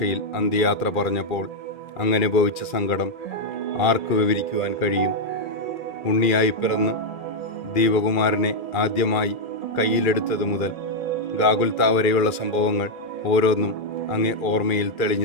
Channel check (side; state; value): right; late; 2.4 ms